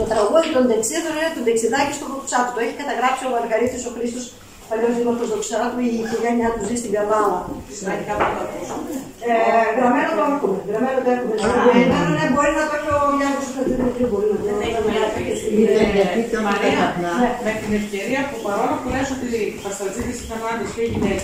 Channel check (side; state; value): both; identical; correlation 1.00